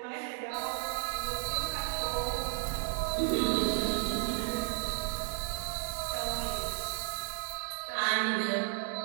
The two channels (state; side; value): silent; left; digital silence